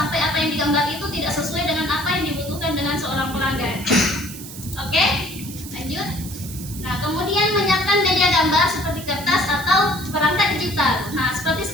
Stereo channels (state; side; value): noise; right; hiss, 13 dB below the sound